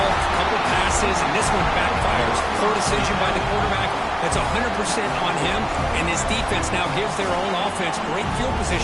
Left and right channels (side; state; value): both; identical; correlation 1.00